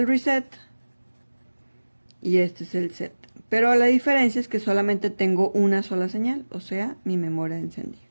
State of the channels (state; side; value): inverted; both; correlation -1.00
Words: reset y este es el set. Pero la diferencia es que solamente tengo una sola señal, o sea, mi memoria de encendido.